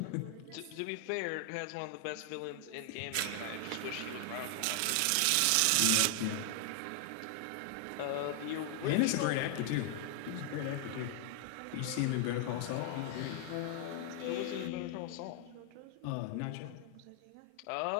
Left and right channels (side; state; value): both; different; correlation 0.00